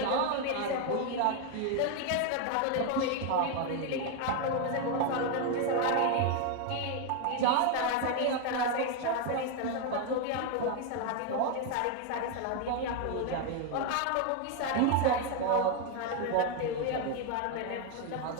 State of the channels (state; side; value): different; both; correlation 0.01